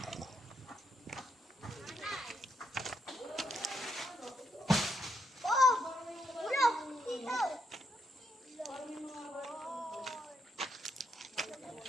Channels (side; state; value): both; normal; correlation 0.78